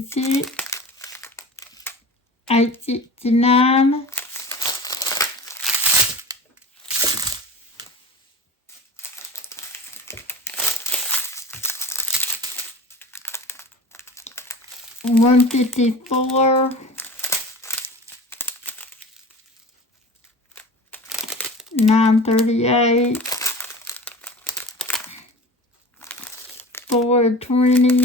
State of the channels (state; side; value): normal; both; correlation 0.36